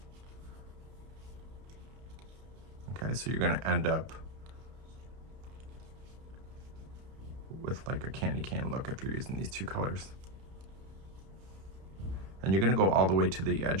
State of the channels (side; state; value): left; late; 31 ms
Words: Okay, so you're going to end up with like a candy cane look if you're using these 2 colors. And you're going to go all the way to the